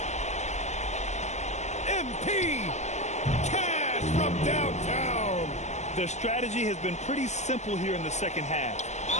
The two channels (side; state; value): right; late; 0.33 ms